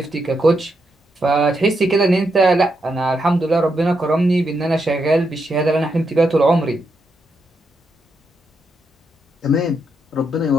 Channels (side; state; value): both; normal; correlation 0.81